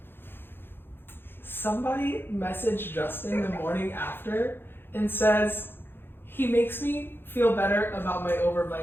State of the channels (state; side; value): late; right; 0.10 ms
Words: somebody messaged Justin the morning after and says he makes me feel better about my